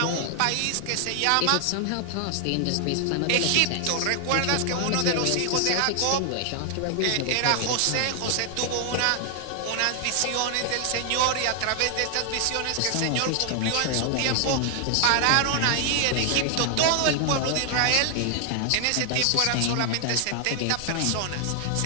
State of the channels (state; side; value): different; both; correlation 0.00